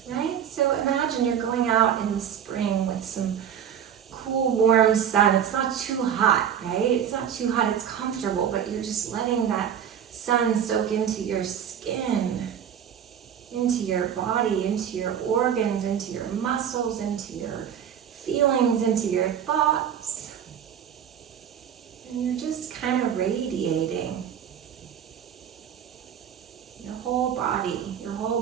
right? So imagine you're going out in the spring with some cool, warm sun. It's not too hot, right? It's not too hot, it's comfortable, but you're just letting that sun soak into your skin, into your body, into your organs, into your muscles, into your feelings, into your thoughts. And you're just kind of radiating. Your whole body, your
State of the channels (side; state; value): left; quieter; 8.8 dB